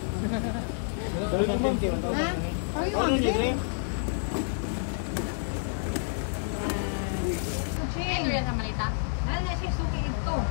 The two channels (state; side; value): silent; right; 59 dB below the other